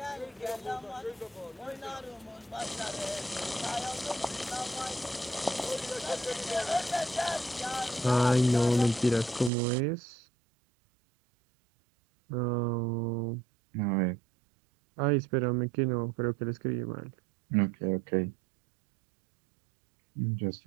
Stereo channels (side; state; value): left; drops out; at 9.5 s